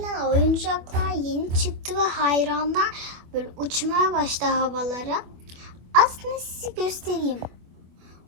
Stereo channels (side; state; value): left; late; 25 ms